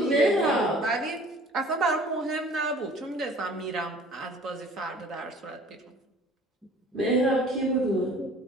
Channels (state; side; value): normal; both; correlation 0.49